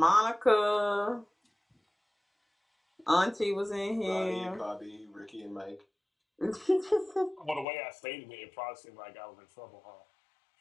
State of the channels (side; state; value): right; drops out; at 7.7 s